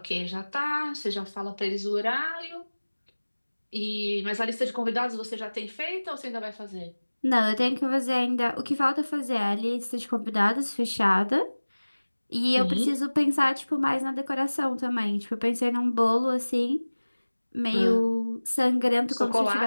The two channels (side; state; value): both; inverted; correlation -1.00